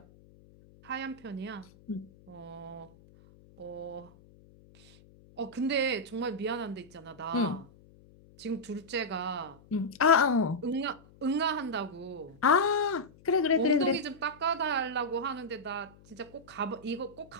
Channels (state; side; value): noise; left; hum, 25 dB below the sound